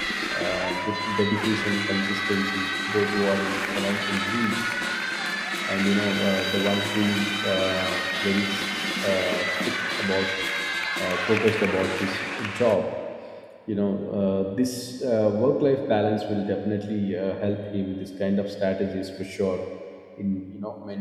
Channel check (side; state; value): both; identical; correlation 1.00